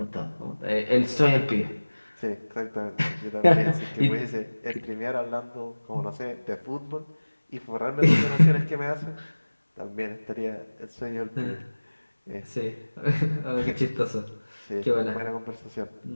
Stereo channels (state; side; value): inverted; both; correlation -1.00